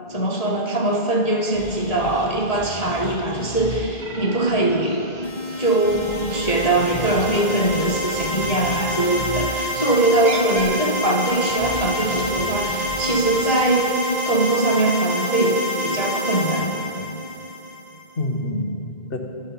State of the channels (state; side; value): late; right; 1.8 ms